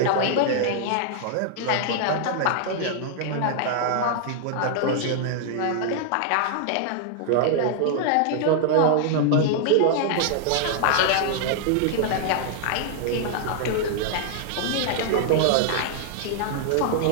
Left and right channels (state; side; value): different; both; correlation 0.00